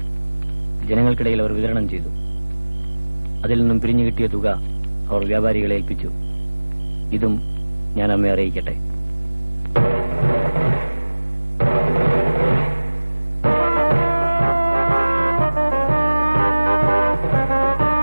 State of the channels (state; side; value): inverted; both; correlation -1.00